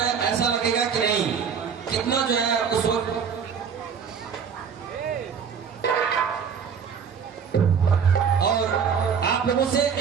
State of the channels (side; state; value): left; quieter; 6.8 dB